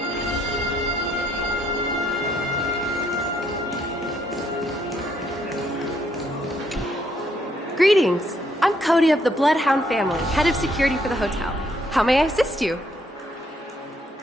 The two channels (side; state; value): both; normal; correlation 0.71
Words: Greetings. I'm Cody of the Bloodhound family, head of security for the hotel. How may I assist you?